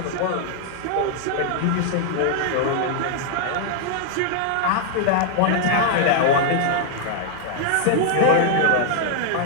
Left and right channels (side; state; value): both; different; correlation 0.00